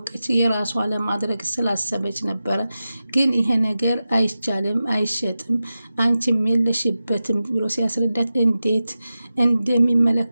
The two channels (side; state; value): both; inverted; correlation -0.93